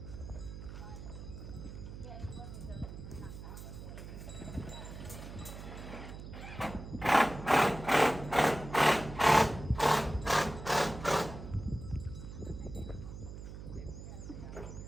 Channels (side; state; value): right; noise; hum, 11 dB below the sound